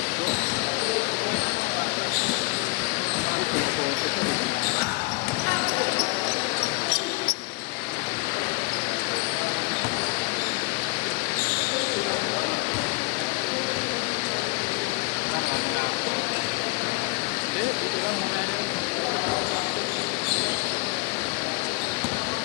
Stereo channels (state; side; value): quieter; right; 27.2 dB